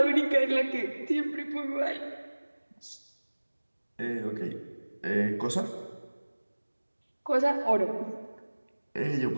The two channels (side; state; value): both; inverted; correlation -1.00